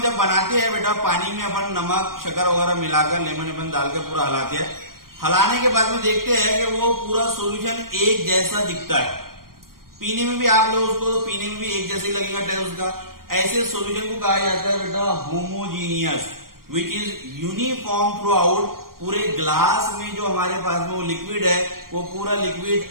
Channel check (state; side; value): late; left; 0.92 ms